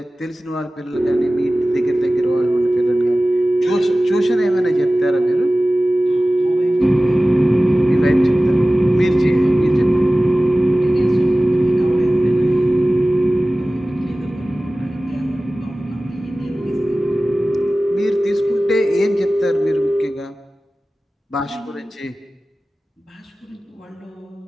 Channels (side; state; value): both; normal; correlation 0.97